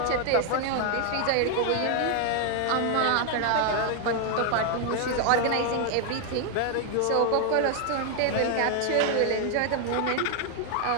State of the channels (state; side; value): different; both; correlation 0.00